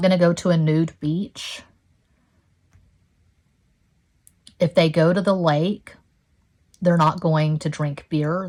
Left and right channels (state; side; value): identical; both; correlation 1.00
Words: going to go to a nude beach. If they go to the lake, they're not going to drink beer.